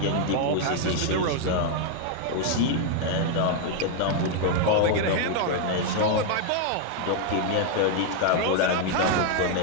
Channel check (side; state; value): both; different; correlation 0.00